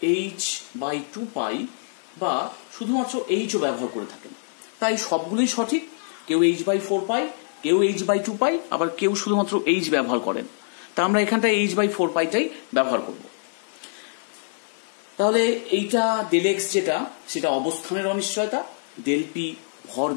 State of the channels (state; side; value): silent; right; digital silence